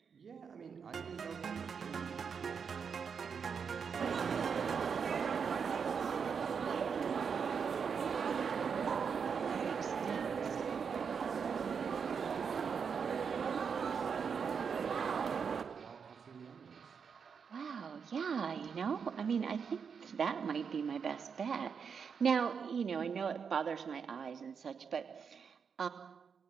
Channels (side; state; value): left; quieter; 6.3 dB